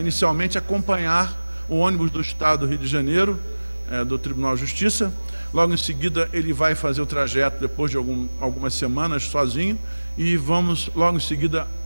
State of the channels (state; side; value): inverted; both; correlation -1.00